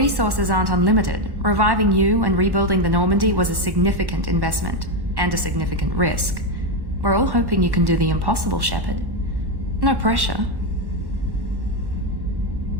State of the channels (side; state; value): left; late; 1.1 ms